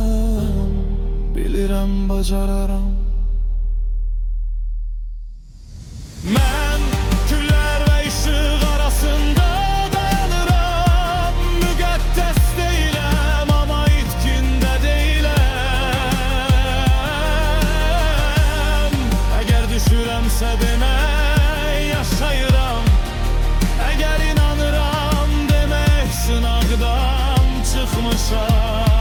Bilirəm bacararam. Mən güller ve ışık arasında dayanıram. Müqəddəs deyiləm, ama itkində deyiləm. Eğer düşürəmsə demək yaşayıram. Eğer inanıram demək sınaqdan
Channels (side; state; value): both; identical; correlation 1.00